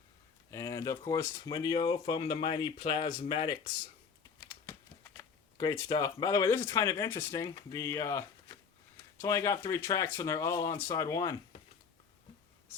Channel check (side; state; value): right; quieter; 6.0 dB